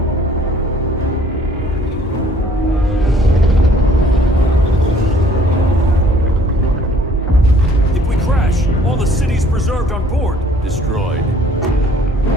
If we crash, all the city's preserved on board. Destroyed.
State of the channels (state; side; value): normal; both; correlation 0.57